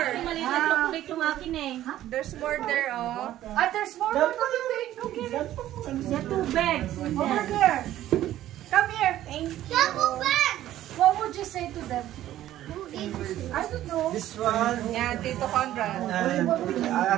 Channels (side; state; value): left; quieter; 13.3 dB